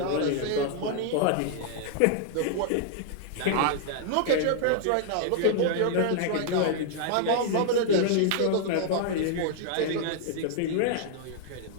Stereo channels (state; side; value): different; both; correlation -0.01